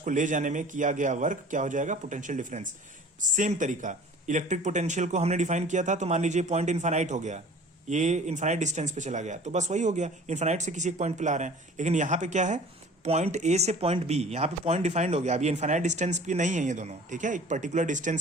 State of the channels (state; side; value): normal; both; correlation 0.46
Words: ले जाने में किया गया वर्क क्या हो जाएगा? Potential difference. सेम तरीका, इलेक्ट्रिक पोटेंशियल को हमने डिफाइन किया था, तो मान लीजिए पॉइंट इनफाइनाइट हो गया, ये इनफाइनाइट डिस्टेंस पे चला गया, तो बस वही हो गया, इनफाइनाइट से किसी एक पॉइंट पे ला रहे हैं। लेकिन यहाँ पे क्या है? पॉइंट ए से पॉइंट बी, यहाँ पे पॉइंट डिफाइंड हो गया, अभी इनफाइनाइट डिस्टेंस पे नहीं है ये दोनों। ठीक है, एक पर्टिकुलर